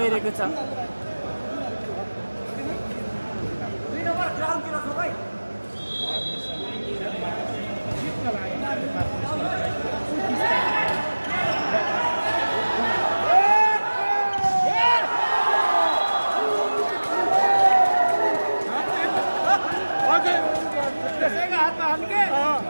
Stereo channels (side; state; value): both; inverted; correlation -1.00